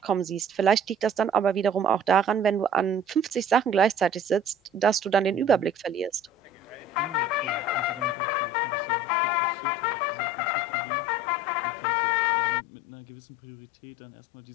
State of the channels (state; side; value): drops out; right; at 8.2 s